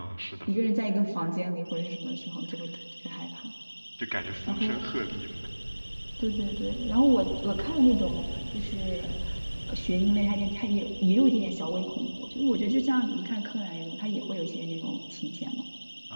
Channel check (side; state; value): both; inverted; correlation -1.00